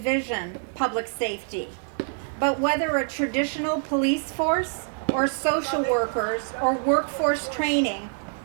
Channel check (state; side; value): silent; left; 61 dB below the other